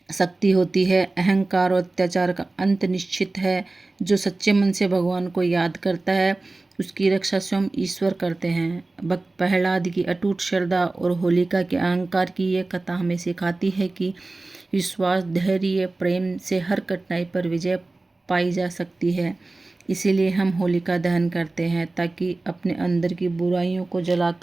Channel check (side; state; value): left; quieter; 3.2 dB